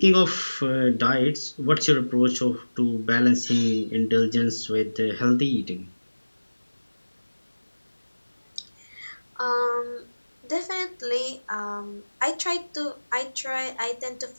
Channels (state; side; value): inverted; both; correlation -1.00